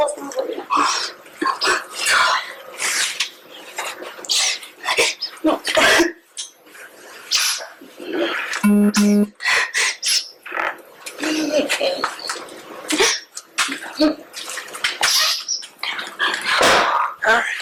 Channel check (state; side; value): identical; both; correlation 1.00